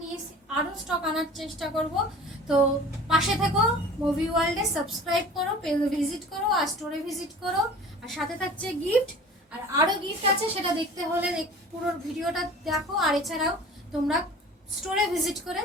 নিয়েছি, আরও স্টক আনার চেষ্টা করব। তো পাশে থেকো, মুভি ওয়ার্ল্ডে সাবস্ক্রাইব করো, পেজ ভিজিট করো আর স্টোরে ভিজিট করো। আর সাথে থাকছে গিফট। আর আরও গিফট আছে, সেটা দেখতে হলে পুরো ভিডিওটা দেখো। আর এছাড়াও তোমরা স্টোরে ভিজিট করে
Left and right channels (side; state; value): both; normal; correlation 0.42